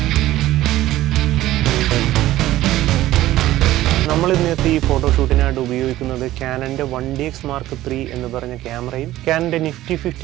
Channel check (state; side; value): quieter; left; 15.2 dB